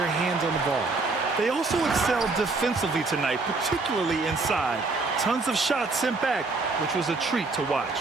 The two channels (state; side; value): quieter; left; 3.7 dB